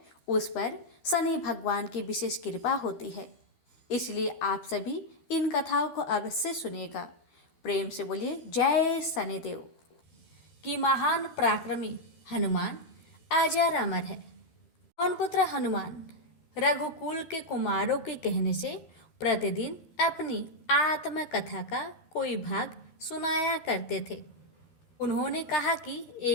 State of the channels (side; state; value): right; late; 13 ms